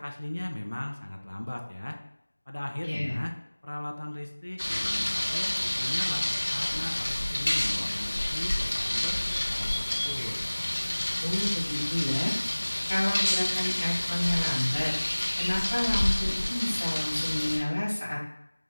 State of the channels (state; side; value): inverted; both; correlation -1.00